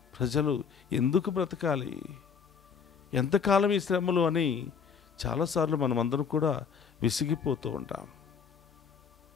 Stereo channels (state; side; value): quieter; right; 6.4 dB